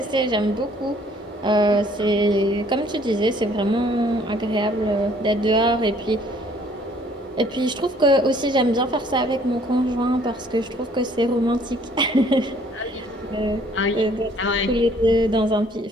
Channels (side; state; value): both; normal; correlation 0.60